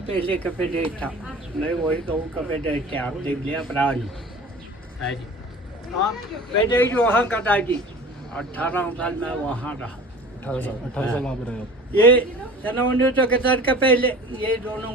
पहले का पेटेज था। मैं वही गाँव का पेटेज था, आप देख लिया पुरानी है जी। हाँ, पेटेज वहाँ का था जी। 18 साल मैं वहाँ रहा। 18 साल वहाँ पे रहे आप। ये सन 1961 का पहले ये दोनों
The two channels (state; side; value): normal; both; correlation 0.40